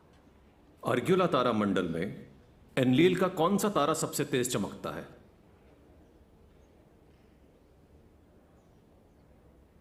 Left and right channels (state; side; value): identical; both; correlation 1.00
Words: अर्ग्युला तारा मंडल में एनलील का कौन सा तारा सबसे तेज चमकता है?